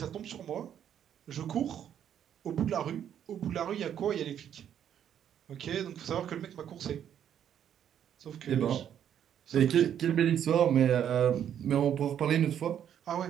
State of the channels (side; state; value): left; quieter; 9.5 dB